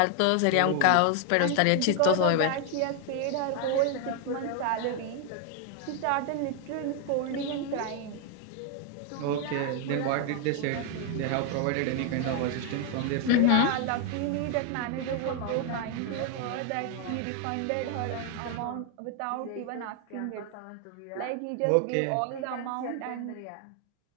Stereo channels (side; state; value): both; different; correlation 0.01